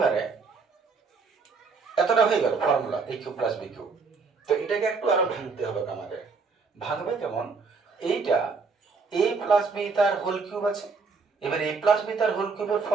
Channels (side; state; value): left; quieter; 4.7 dB